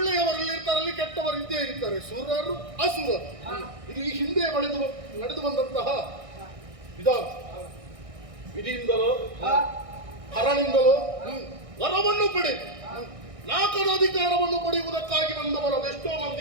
ಇರ್ತಾರಲ್ಲಿ, ಕೆಟ್ಟವರು ಇದ್ದೇ ಇರ್ತಾರೆ, ಸುರರು ಅಸುರರು. ಇದು ಈ ಹಿಂದೆ ನಡೆದು ಬಂದಂತಹ ವಿಧಾನ. ವಿಧಿಯಿಂದಲೋ ಹರನಿಂದಲೋ ವರವನ್ನು ಪಡೆದು ನಾಲ್ಕರ ಅಧಿಕಾರವನ್ನು ಪಡೆಯುವುದಕ್ಕಾಗಿ ಬಂದವರು ಅದೆಷ್ಟೋ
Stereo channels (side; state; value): left; late; 1.6 ms